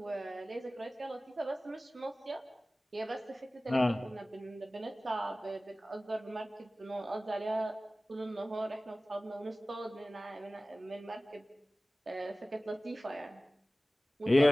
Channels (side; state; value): both; normal; correlation 0.97